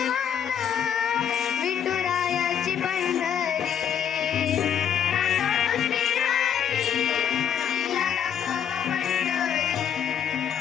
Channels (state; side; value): quieter; right; 8.6 dB